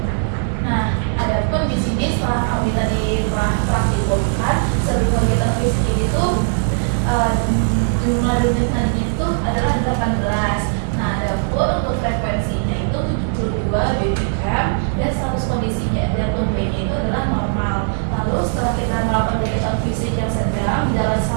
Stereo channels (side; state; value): left; silent; 64 dB below the other